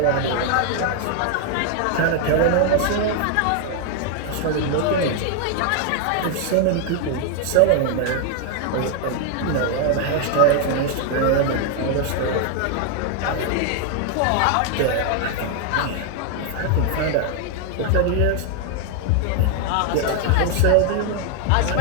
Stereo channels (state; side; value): different; both; correlation 0.01